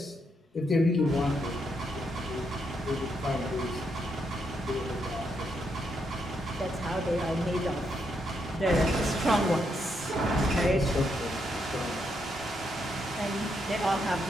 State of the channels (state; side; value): normal; both; correlation 0.79